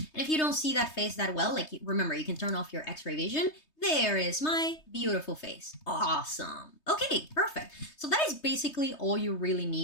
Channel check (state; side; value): late; right; 3.2 ms